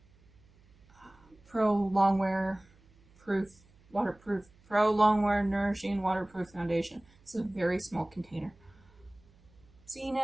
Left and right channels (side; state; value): right; noise; hum, 29 dB below the sound